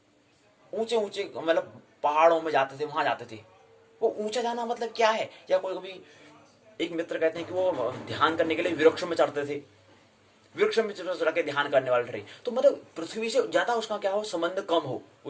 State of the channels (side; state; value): both; identical; correlation 1.00